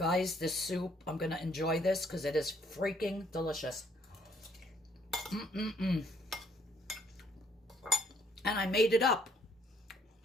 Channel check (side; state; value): both; normal; correlation 0.66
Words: this soup, I'm gonna enjoy this because it is freaking delicious. And I made it up.